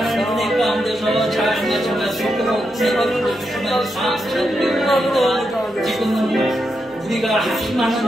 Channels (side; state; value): both; normal; correlation 0.84